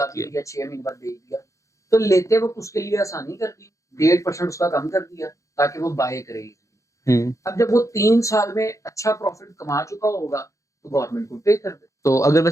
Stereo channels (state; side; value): late; right; 0.15 ms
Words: अभी लिया 6 महीने बाद बेच दिया। तो लेते वक्त उसके लिए आसानी कर दी, 1.5% उसका कम कर दिया ताकि वो बाय करे। अब जब वो 3 साल में अच्छा प्रॉफिट कमा चुका होगा तो गवर्नमेंट को पे कर दे। तो अगर